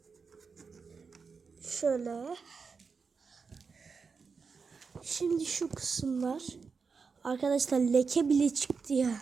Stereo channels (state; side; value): quieter; left; 5.2 dB